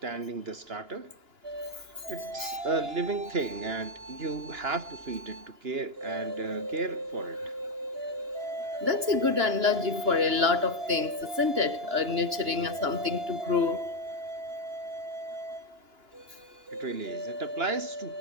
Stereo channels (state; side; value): late; left; 2.9 ms